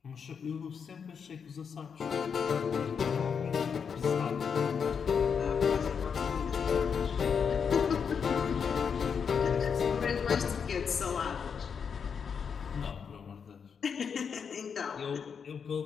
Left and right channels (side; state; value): right; quieter; 6.6 dB